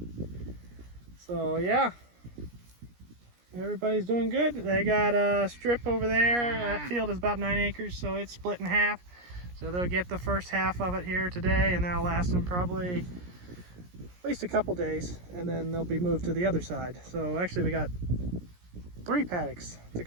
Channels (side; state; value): left; late; 17 ms